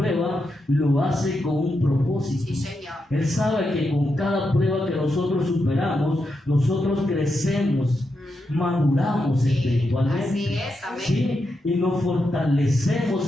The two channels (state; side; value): normal; both; correlation 0.85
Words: lo hace con un propósito. Él sabe que con cada prueba que nosotros superamos, nosotros crecemos, maduramos espiritualmente. ¿Sí? Y nos fortalecemos